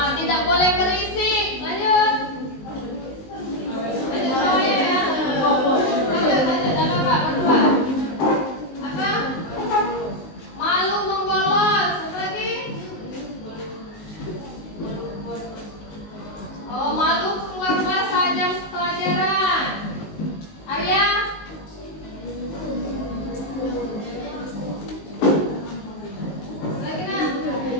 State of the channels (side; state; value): right; late; 19 ms